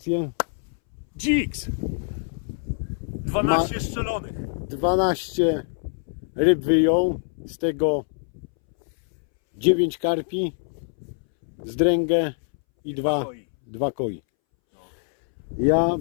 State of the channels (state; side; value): silent; right; 62 dB below the other